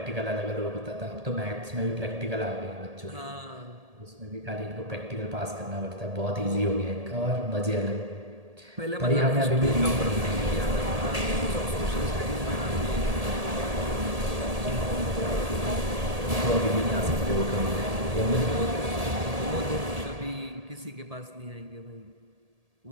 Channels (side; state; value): left; late; 1.8 ms